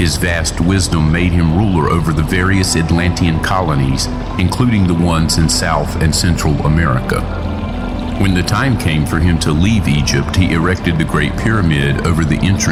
vast wisdom made him ruler over the various Atlantean colonies, including the ones in South and Central America. When the time came for him to leave Egypt, he erected the Great Pyramid over the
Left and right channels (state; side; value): identical; both; correlation 1.00